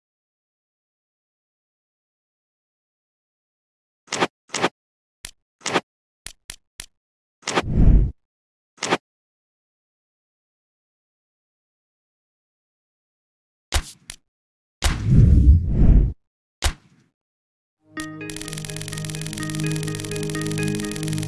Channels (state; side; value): identical; both; correlation 1.00